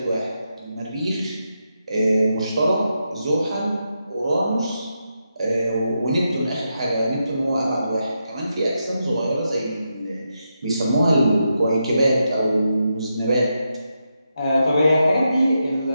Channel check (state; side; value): inverted; both; correlation -0.85